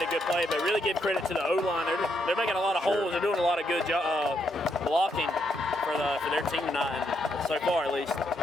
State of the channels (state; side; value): normal; both; correlation 0.77